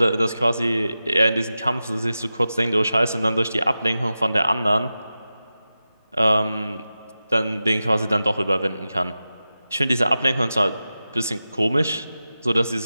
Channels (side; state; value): both; inverted; correlation -0.93